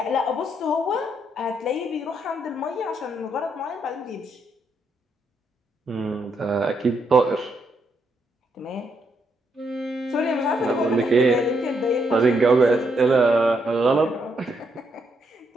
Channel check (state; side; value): normal; both; correlation 0.77